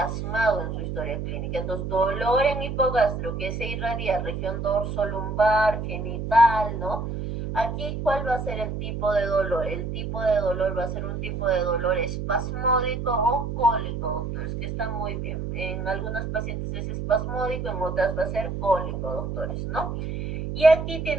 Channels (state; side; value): noise; right; hum, 4 dB below the sound